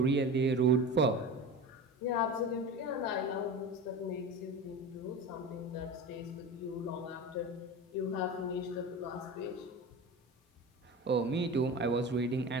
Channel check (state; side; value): normal; both; correlation 0.29